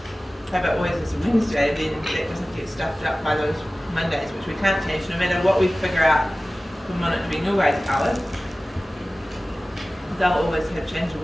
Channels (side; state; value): both; normal; correlation 0.97